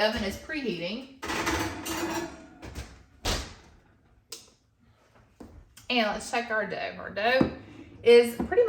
is preheating. And let's check our dough. Our dough is pretty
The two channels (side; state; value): both; identical; correlation 1.00